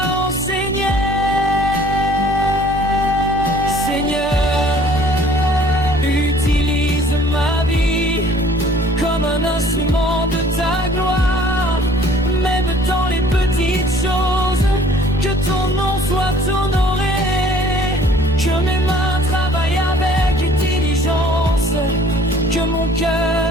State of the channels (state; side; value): normal; both; correlation 0.54